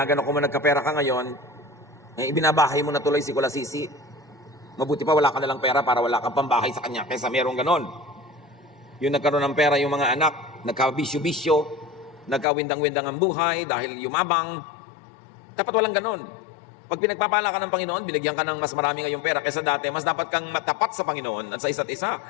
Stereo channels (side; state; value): right; drops out; at 12.5 s